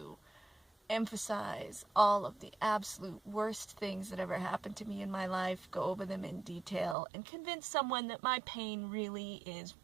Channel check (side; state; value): left; drops out; at 7.0 s